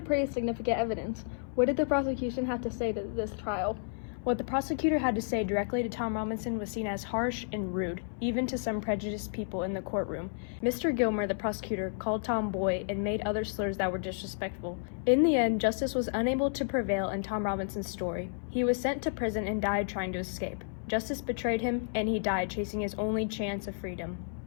pretty significant evidence. What did the prosecution have to say to this trial? What the prosecutor had to say directly to Tom Robinson was seen as harsh and rude, even to some prejudiced people in the courtroom. Mr. Gilmer, the prosecutor, called Tom boy and made other slurs that were disrespectful. In the end, justice was unable to prevail in Tom Robinson's story. He was sent to prison and died trying to escape. Justice betrayed him, and he died chasing his only chance of freedom.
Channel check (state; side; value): silent; right; 57 dB below the other